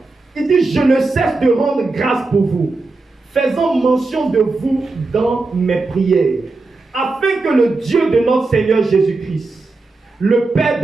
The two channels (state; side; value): quieter; left; 3.5 dB